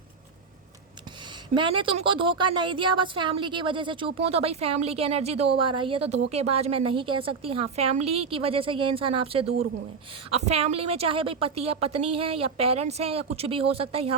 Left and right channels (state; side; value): quieter; left; 5.2 dB